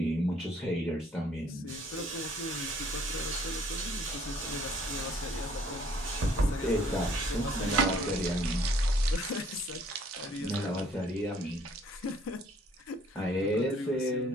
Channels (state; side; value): normal; both; correlation 0.60